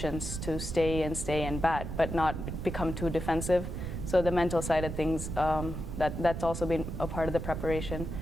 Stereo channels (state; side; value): noise; right; rumble, 5 dB below the sound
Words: to stay and bat, but not become too defensive. So the mental side of things, that's also been a part of the preparation.